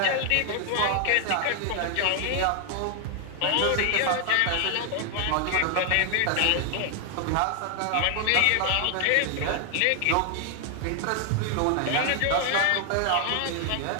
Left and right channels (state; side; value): different; both; correlation 0.00